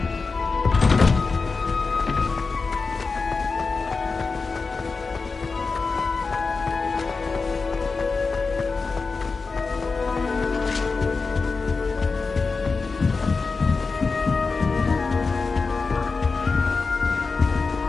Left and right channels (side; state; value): right; quieter; 4.4 dB